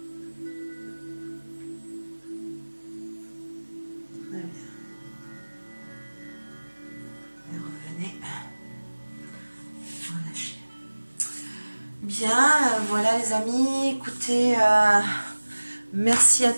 Très bien. Et revenez. Relâchez. Bien, voilà les amis, écoutez, merci à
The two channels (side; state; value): both; inverted; correlation -1.00